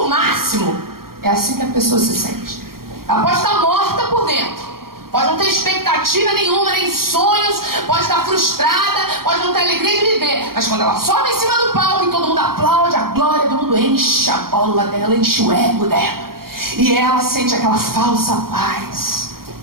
o máximo. É assim que a pessoa se sente. Ela pode estar morta por dentro, pode não ter expectativa nenhuma, nem sonhos, pode estar frustrada, pode não ter alegria de viver, mas quando ela sobe em cima do palco e todo mundo aplaude, a glória do mundo enche a bola dela, enche o ego dela. E ela sente aquela falsa paz.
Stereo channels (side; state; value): left; late; 0.93 ms